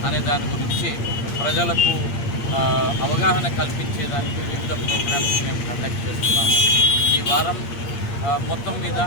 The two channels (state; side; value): late; right; 8.6 ms